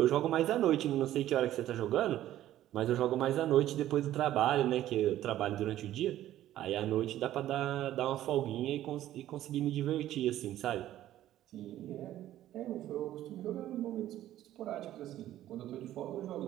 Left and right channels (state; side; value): quieter; left; 13.2 dB